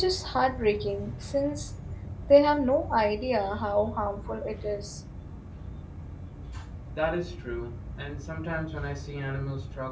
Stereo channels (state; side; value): identical; both; correlation 1.00